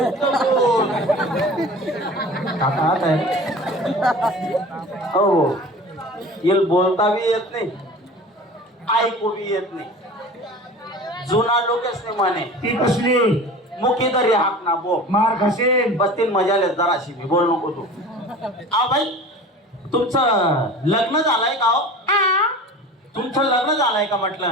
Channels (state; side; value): normal; both; correlation 0.38